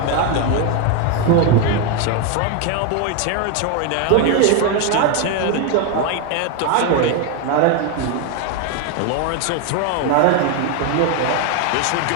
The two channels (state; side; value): different; both; correlation 0.01